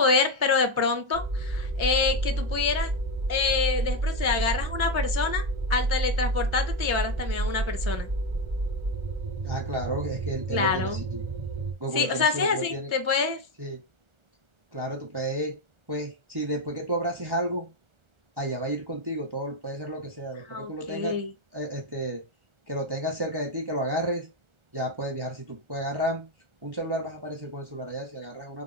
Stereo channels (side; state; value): left; late; 1.4 ms